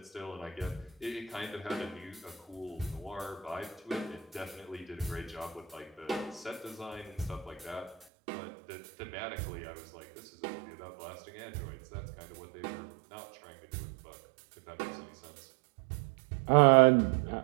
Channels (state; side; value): drops out; left; at 8.1 s